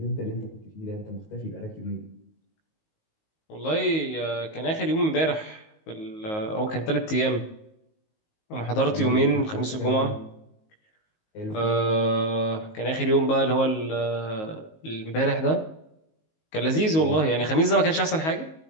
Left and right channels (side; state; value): right; late; 19 ms